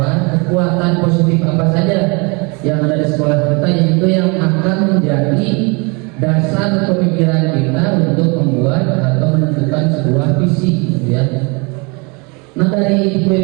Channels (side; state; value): left; quieter; 30.0 dB